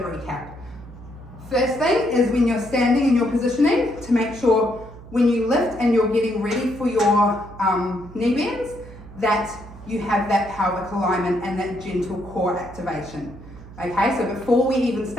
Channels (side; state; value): right; noise; hum, 17 dB below the sound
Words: First thing is when you're standing in your positioning, to make sure when you lift and you're getting ready for your knee bends, that you have that pelvic alignment and that gentle core activation. Okay, so before we even